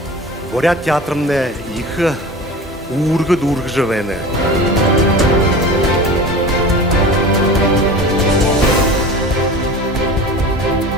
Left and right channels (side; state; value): both; normal; correlation 0.35